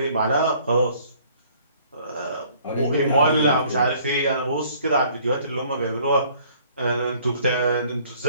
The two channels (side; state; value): both; inverted; correlation -0.58